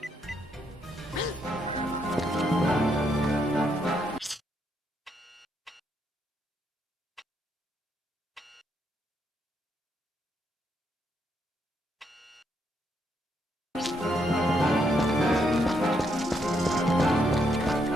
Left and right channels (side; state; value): both; normal; correlation 0.76